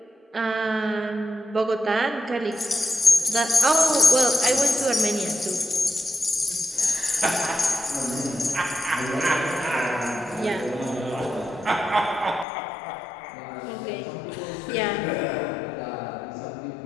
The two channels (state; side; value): drops out; right; at 12.5 s